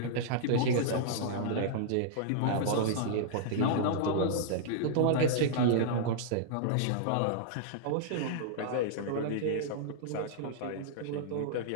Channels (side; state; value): both; different; correlation -0.02